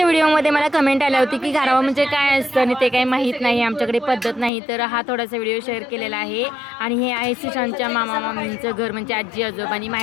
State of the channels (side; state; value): right; drops out; at 4.5 s